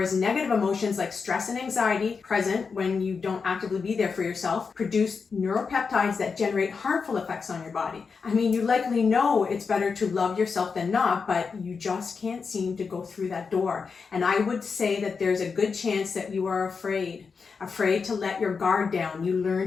negative emotions like stress and anxiety, present when you don't actively be there for yourself, produce neuropeptides that generate harmful effects on your body. I mean, you likely know it's better to love yourself than not, but you just can't seem to go through that door. And I would say that there's a good chance that you are afraid to let your guard down. You learn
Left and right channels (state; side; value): quieter; right; 5.3 dB